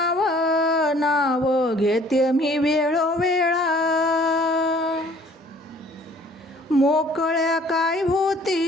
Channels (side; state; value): both; normal; correlation 0.55